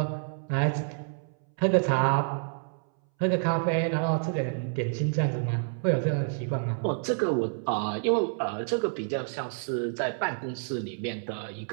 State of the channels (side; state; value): left; silent; 59 dB below the other